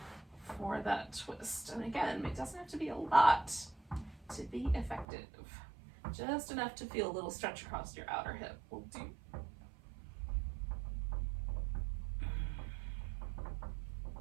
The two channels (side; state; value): left; drops out; at 5.1 s